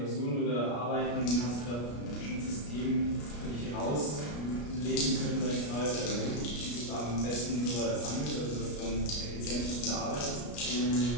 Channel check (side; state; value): right; late; 33 ms